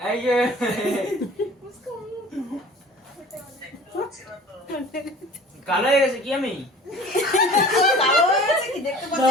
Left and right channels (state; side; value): normal; both; correlation 0.44